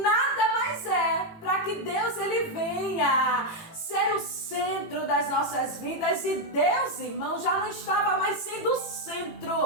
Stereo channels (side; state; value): right; late; 18 ms